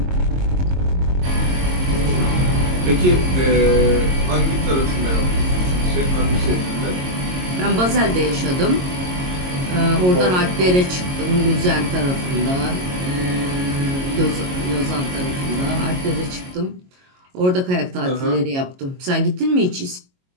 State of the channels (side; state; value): left; late; 22 ms